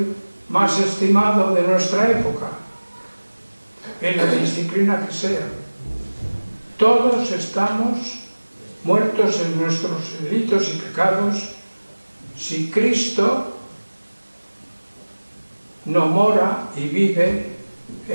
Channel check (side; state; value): both; inverted; correlation -1.00